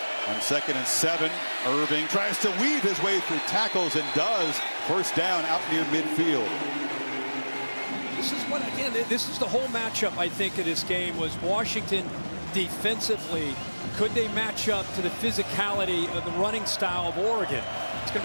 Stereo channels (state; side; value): inverted; both; correlation -1.00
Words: On 2nd and 7, Irving tries to weave his way through tackles and does. First down out near midfield. This is what, again, this is the whole matchup, I think, of this game was Washington defensively. Could they match up to the physicality of the running style of Oregon? It's going